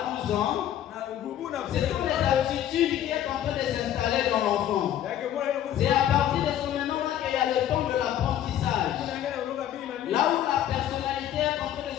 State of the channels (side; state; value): right; quieter; 11.2 dB